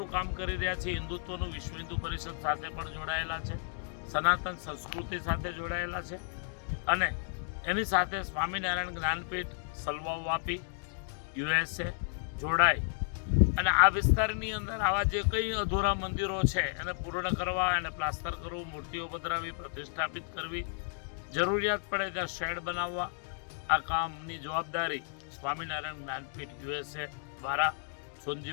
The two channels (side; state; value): right; silent; digital silence